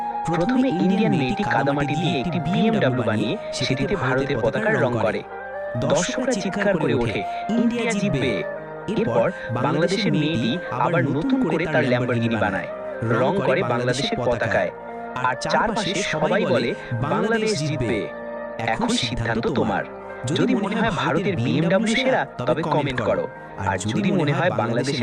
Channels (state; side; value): identical; both; correlation 1.00